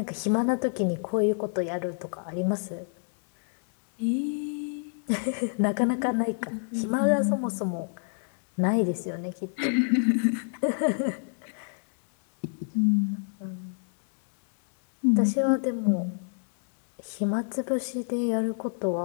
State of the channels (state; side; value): silent; right; 59 dB below the other